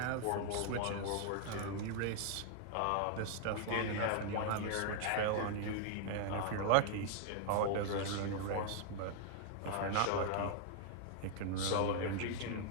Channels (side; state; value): both; different; correlation 0.00